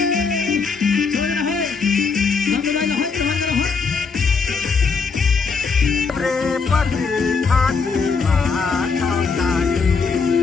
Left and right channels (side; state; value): right; quieter; 5.1 dB